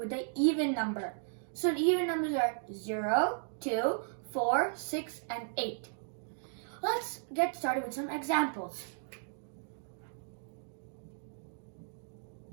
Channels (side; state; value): left; silent; digital silence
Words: an even number. So the even numbers are 0, 2, 4, 6, and 8. Let's get started with some examples.